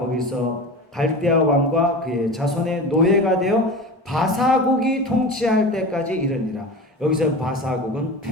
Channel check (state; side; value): normal; both; correlation 0.31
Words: 갈대아 왕과 그의 자손의 노예가 되어 바사국이 통치할 때까지 이르니라. 여기서 바사국은